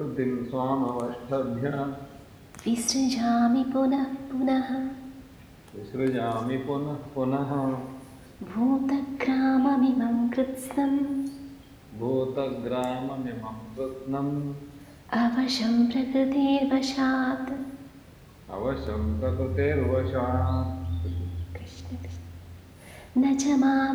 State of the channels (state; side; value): identical; both; correlation 1.00